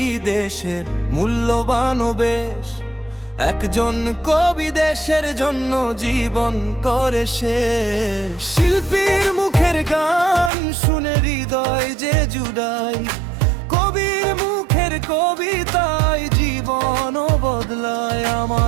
দেশের মূল্যবান বেশ, একজন কবি দেশের জন্য জীবন করে শেষ। শিল্পীর মুখের গান শুনে হৃদয় যে জুড়ায়, কবির মুখের কবিতায় জীবন বদলায়।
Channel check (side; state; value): left; drops out; at 10.5 s